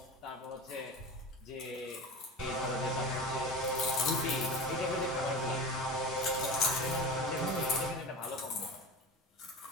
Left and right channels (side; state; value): both; normal; correlation 0.30